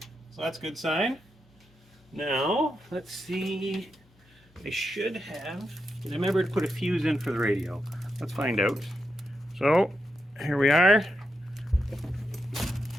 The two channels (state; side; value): normal; both; correlation 0.85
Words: so that's a good sign. Now, let's see. I should have. I remember to put a fuse in for the radio. Let's find out. So, here we are.